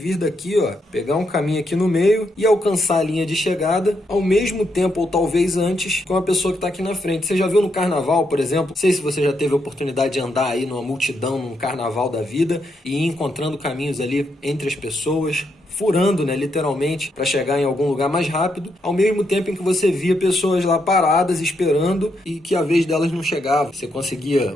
daqui, pegar um caminho aqui no meio e alcançar a linha de chegada ao mesmo tempo, ou talvez antes, com a pessoa que está aqui na frente. Você já viu no carnaval, por exemplo? Não sei se você já teve a oportunidade de andar aí numa multidão, num carnaval da vida, e ir encontrando caminhos ali entre as pessoas, furando, né, literalmente, para chegar em algum lugar mais rápido, ao mesmo tempo em que você via pessoas lá paradas, esperando, e que a vez delas não chegava. Você conseguia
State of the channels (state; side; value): normal; both; correlation 0.79